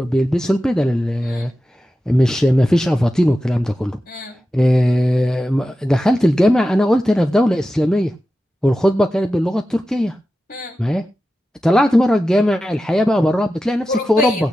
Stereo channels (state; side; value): normal; both; correlation 0.93